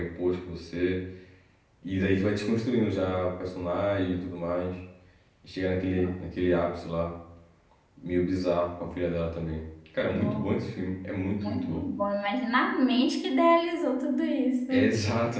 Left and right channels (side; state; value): both; identical; correlation 1.00